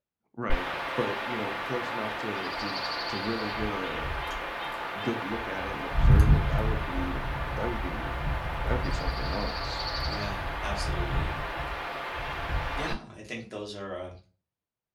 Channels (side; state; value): both; identical; correlation 1.00